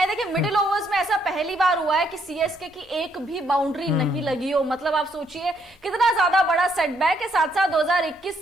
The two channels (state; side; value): normal; both; correlation 0.71